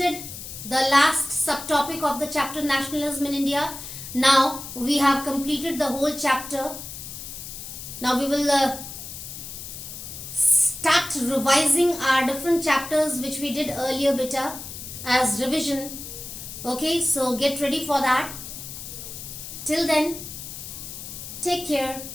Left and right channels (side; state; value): left; noise; hiss, 10 dB below the sound